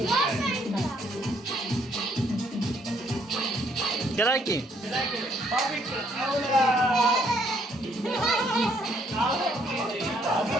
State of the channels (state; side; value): normal; both; correlation 0.68